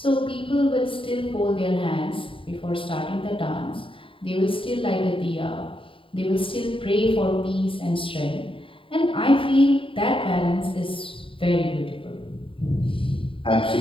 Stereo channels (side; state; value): right; late; 0.25 ms